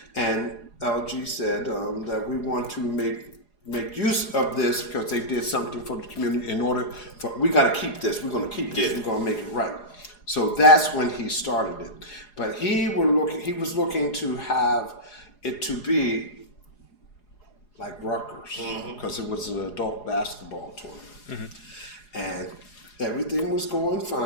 and LG said that we want to make use of this because they did something for the community in order for, we got to keep this. We're going to keep this. Yeah. We're going to make it right. So that's when he started it. But he was looking to have it to be like Rutgers, because it was an adult basketball tournament. And everything was going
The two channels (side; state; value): right; late; 4.8 ms